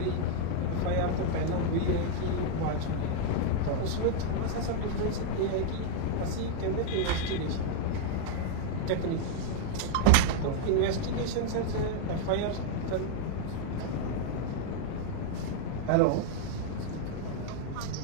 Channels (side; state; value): both; different; correlation -0.01